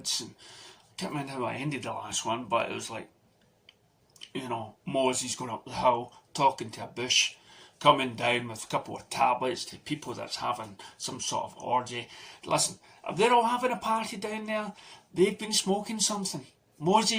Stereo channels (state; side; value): identical; both; correlation 1.00